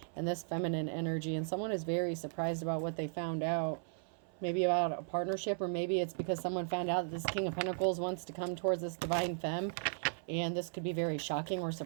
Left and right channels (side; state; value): left; silent; 54 dB below the other